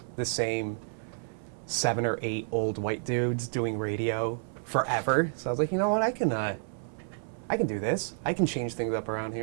the same 7 or 8 old white dudes doing radio forever. So I was like, you know what, I can do this. I can change things up around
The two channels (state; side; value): silent; left; 58 dB below the other